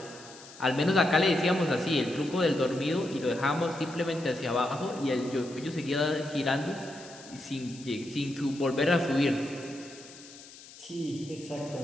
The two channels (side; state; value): left; noise; hiss, 18 dB below the sound